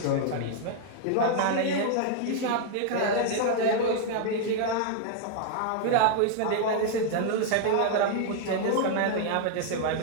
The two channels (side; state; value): both; different; correlation -0.01